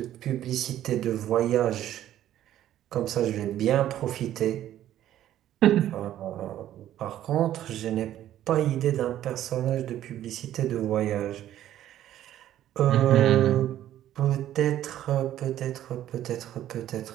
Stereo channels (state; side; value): quieter; left; 12.3 dB